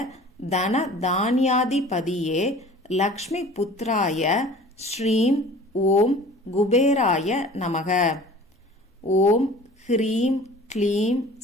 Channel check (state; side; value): normal; both; correlation 0.45